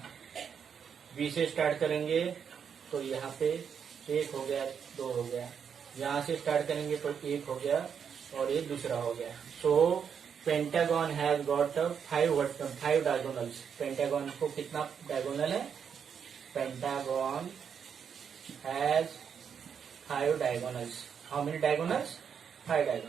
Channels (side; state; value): left; quieter; 7.3 dB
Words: बी से स्टार्ट करेंगे तो यहाँ पे 1 हो गया, 2 हो गया। यहाँ से स्टार्ट करेंगे तो 1 हो गया और ये दूसरा हो गया। So pentagon has got 5 diagonals. Pentagon को कितना डायगोनल है? Pentagon has 5 diagonals. How many diagonals? 5